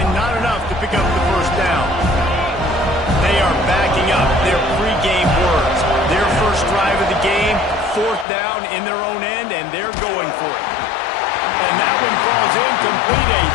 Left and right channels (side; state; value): right; drops out; at 8.2 s